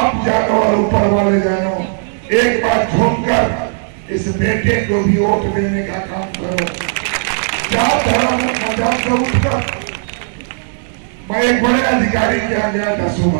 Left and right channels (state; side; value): silent; left; digital silence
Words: जानो और ऊपर वाले जानो, एक बार झूमकर इस बेटे को भी वोट देने का काम करो। जात धर्म मजाक से उठकर मैं एक बड़े अधिकारी के यहाँ गया था